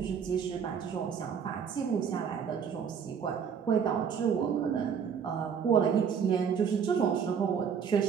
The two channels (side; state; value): left; quieter; 7.2 dB